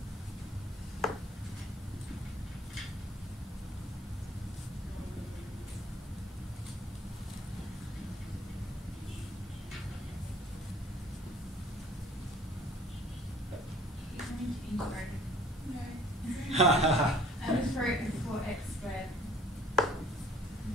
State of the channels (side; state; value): both; normal; correlation 0.53